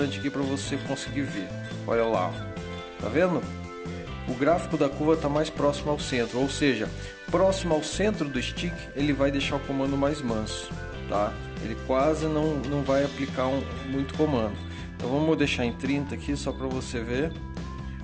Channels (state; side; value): identical; both; correlation 1.00